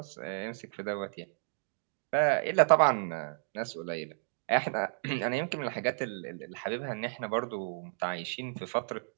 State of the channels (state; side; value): silent; left; digital silence